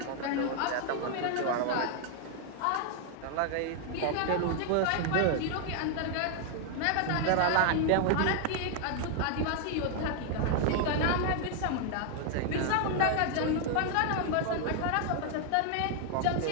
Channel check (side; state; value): both; different; correlation 0.00